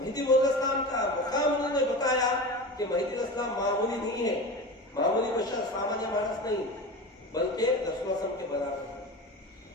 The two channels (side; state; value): both; normal; correlation 0.30